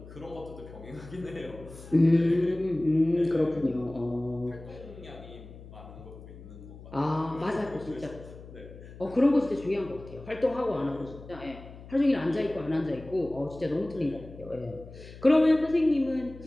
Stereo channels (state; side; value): noise; left; hum, 16 dB below the sound